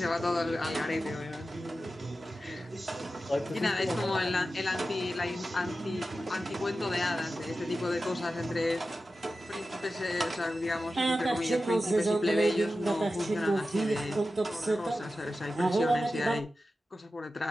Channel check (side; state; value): both; normal; correlation 0.93